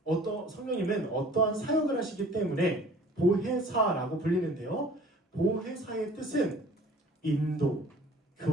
성령님은 어떠한 사역을 하시기 때문에 보혜사라고 불리는데요. 보혜사의 뜻은 인도,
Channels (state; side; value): normal; both; correlation 0.49